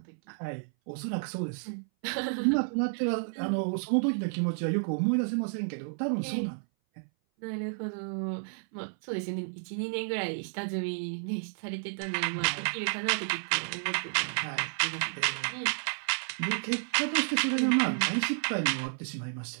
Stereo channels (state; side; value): silent; left; 57 dB below the other